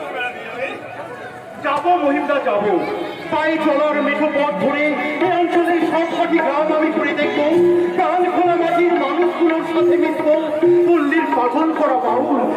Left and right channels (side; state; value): both; identical; correlation 1.00